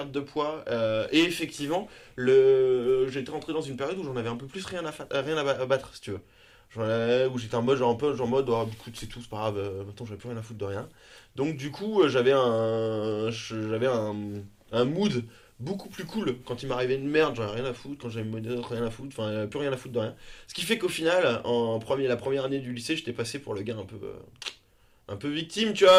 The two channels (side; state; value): both; identical; correlation 1.00